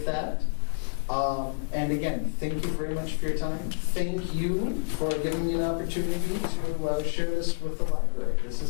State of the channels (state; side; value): silent; right; digital silence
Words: that. And again, thank you very much for your time. Thank you for giving me an opportunity to share this with the library. This